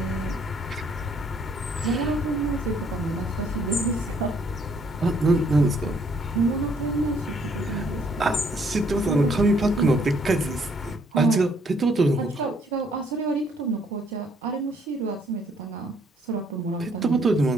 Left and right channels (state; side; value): normal; both; correlation 0.66